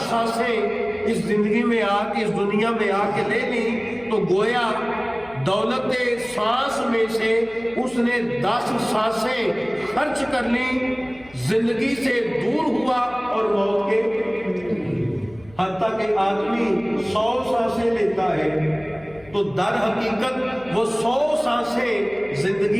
سانسیں اس زندگی میں آ کے، اس دنیا میں آ کے لے لی تو گویا دولت سانس میں سے اس نے 10 سانسیں خرچ کر لی، زندگی سے دور ہوا اور موت کے، حتیٰ کہ آدمی 100 سانسیں لیتا ہے تو در حقیقت وہ 100 سانسیں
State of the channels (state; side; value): noise; left; hum, 25 dB below the sound